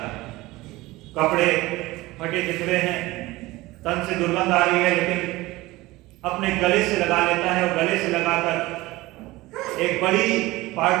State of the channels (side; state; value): left; quieter; 19.5 dB